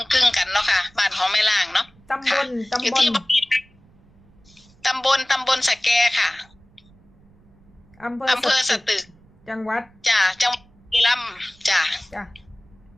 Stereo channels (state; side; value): noise; right; rumble, 29 dB below the sound